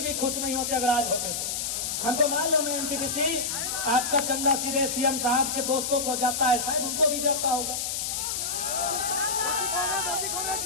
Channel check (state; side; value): noise; left; hiss, 2 dB below the sound